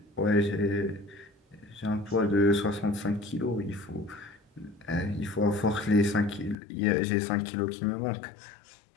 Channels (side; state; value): right; drops out; at 6.6 s